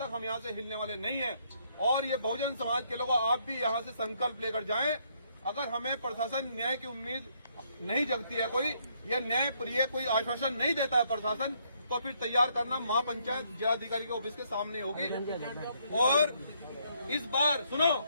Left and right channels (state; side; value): inverted; both; correlation -0.71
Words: हम यहाँ से हिलने वाले नहीं हैं। और ये बहुजन समाज के लोगों, आप भी यहाँ से संकल्प लेकर जाएं। अगर हमें प्रशासन न्याय की उम्मीद नहीं जगती है, कोई यह न्याय प्रिय कोई आश्वासन नहीं देता है प्रशासन, तो फिर तैयार करना महापंचायत जिलाधिकारी के ऑफिस के सामने होगी। और इस बार सुनो,